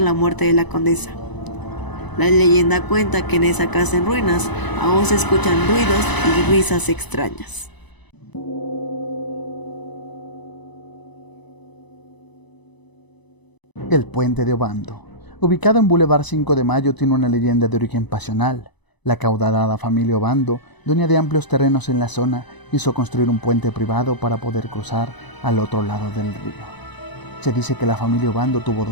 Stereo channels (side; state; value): right; late; 1.0 ms